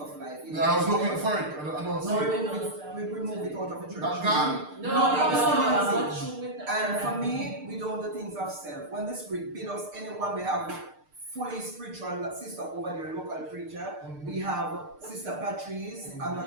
life. Yeah, I was looking for it. I don't see it. We remove it out of the church. That's gone? No. And for me, we don't do the things of self. When the Spirit bid us, anyone we have fully spiritual sister over there, local preacher. We have Sister Patrice,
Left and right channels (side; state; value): left; late; 6.6 ms